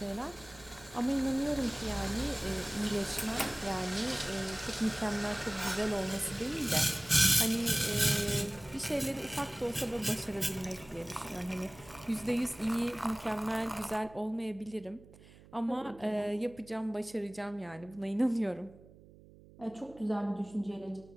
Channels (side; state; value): right; noise; hum, 22 dB below the sound